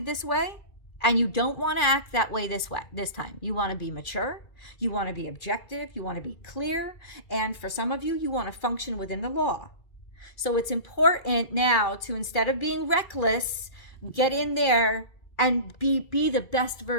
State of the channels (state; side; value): late; right; 2.4 ms